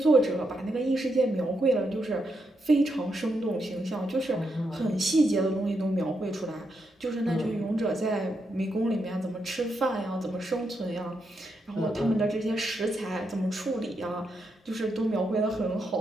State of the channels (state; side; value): normal; both; correlation 0.82